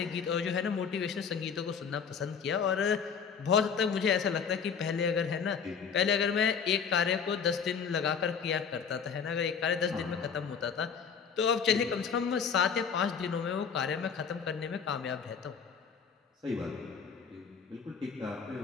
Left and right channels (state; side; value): quieter; right; 6.5 dB